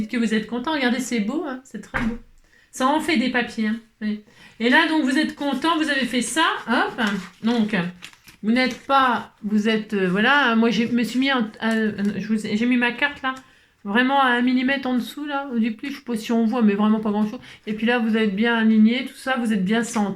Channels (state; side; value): identical; both; correlation 1.00